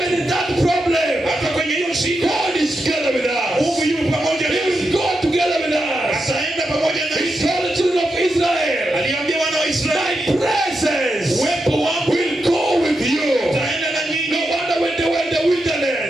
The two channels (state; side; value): normal; both; correlation 0.86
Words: in that problem, Hata kwenye hiyo shida, God is together with us. Mungu yuko pamoja He nasi. will go together with us. Ataenda pamoja He nasi. told the children of Israel, Aliambia wana wa my Israeli, presence uwepo wangu will go with you. utaenda na No nyinyi. wonder when they were in the